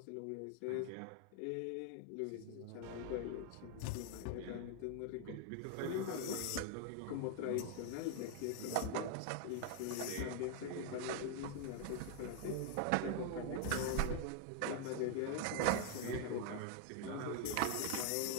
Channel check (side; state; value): both; different; correlation 0.00